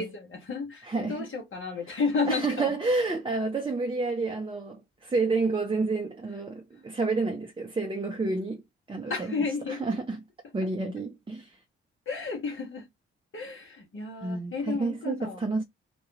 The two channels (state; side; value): normal; both; correlation 0.55